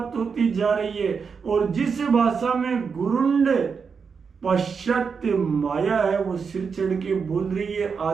होती जा रही है। और जिस भाषा में गुरुंड पाश्चात्य माया है, वो सिर चढ़ के बोल रही है।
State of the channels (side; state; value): left; quieter; 5.8 dB